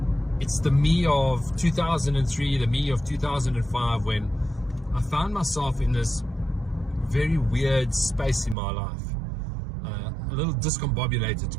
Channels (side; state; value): left; drops out; at 8.6 s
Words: it's the me of 2003, the me of 2005, when I found myself in this very weird space in my life. A little discombobulated, to